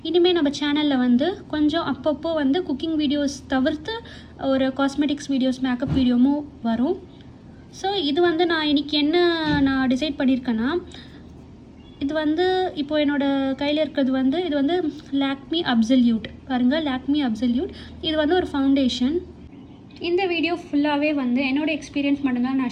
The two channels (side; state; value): both; identical; correlation 1.00